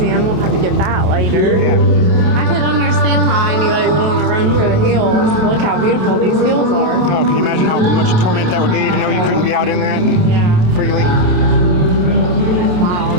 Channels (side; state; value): left; late; 27 ms